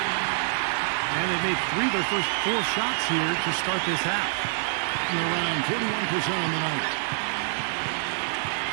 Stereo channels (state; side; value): silent; left; digital silence